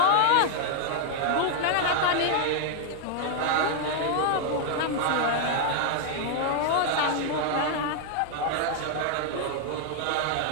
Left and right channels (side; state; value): both; different; correlation 0.00